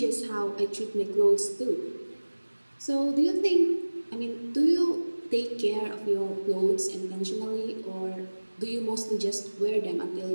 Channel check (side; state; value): both; inverted; correlation -1.00